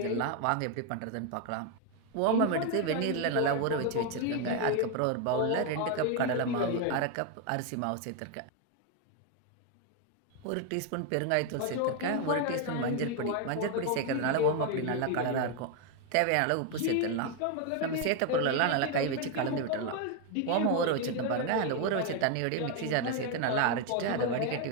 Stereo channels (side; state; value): both; different; correlation 0.01